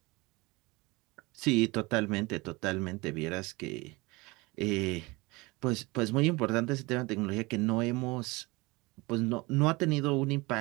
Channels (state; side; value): quieter; left; 24.0 dB